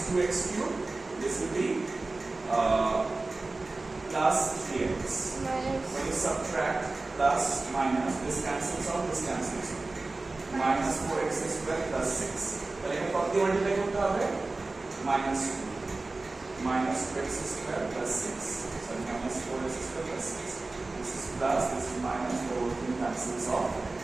2x cube. This will be plus 3x. When you subtract plus minus, this cancels out, this cancels out. Minus 4x square plus 6. তাহলে এখানে কত দিয়ে multiply করতে হবে? Minus 2 minus 2x square plus 6. So minus 4x square plus 6. This is plus, this is minus, the whole thing cancels off.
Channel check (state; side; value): quieter; left; 3.3 dB